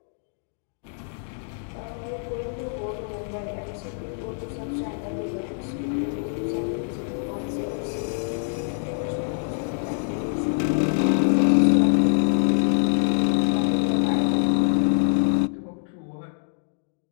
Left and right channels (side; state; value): right; silent; digital silence